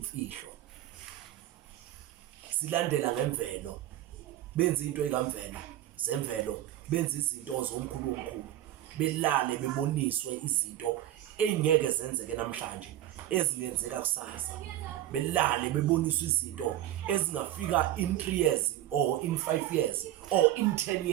silandela ngemvelo benza into ekamvelo zemvelo benza izinto zomkhulu belale beboniswe izinto engeke zenzeke namhlanje ezingenzeka kusasa. Belale beboniswe izinto ezingafika in 3 years or in 5 years or in 10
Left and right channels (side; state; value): left; quieter; 13.4 dB